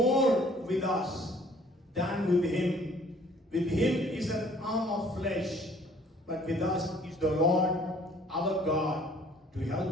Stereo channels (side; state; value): both; normal; correlation 0.57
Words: with us than with him. With him is an arm of flesh, but with us is the Lord our God to